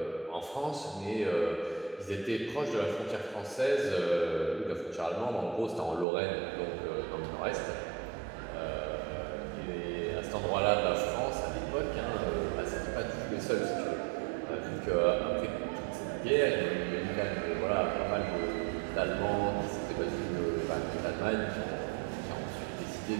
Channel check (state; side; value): drops out; left; at 6.1 s